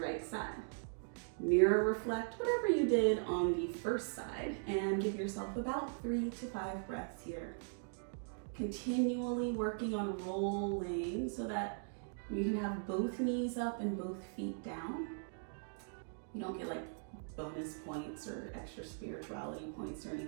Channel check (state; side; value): silent; left; digital silence